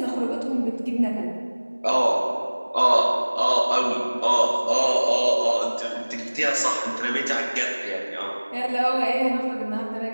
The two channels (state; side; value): inverted; both; correlation -1.00